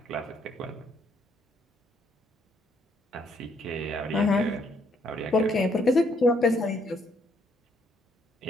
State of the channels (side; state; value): both; normal; correlation 0.70